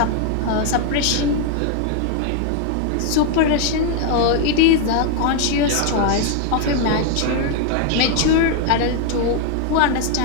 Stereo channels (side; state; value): both; different; correlation 0.00